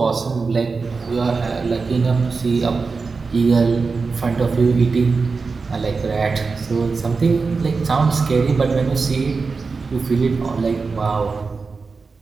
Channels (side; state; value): left; quieter; 4.5 dB